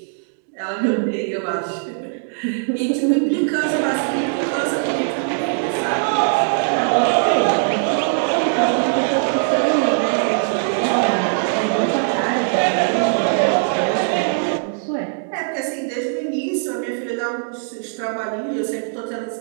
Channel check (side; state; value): left; silent; digital silence